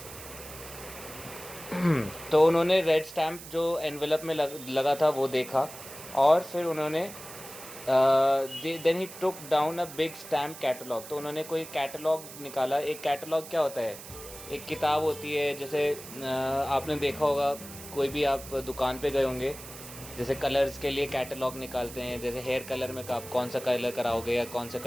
तो उन्होंने रेड स्टैम्प जो एनवेलप में लगा था वो देखा, और फिर उन्होंने then he took down a big stamp catalogue. तो उन्होंने कोई कैटलॉग निकाला। एक कैटलॉग क्या होता है? एक किताब होती है, जैसे आपने देखा होगा, कोई भी आप दुकान पे गए होंगे, जैसे कलर्स के लिए कैटलॉग निकालते हैं, जैसे हेयर कलर में आप कौन सा कलर कराओगे या कौन सा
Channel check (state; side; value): noise; right; hiss, 14 dB below the sound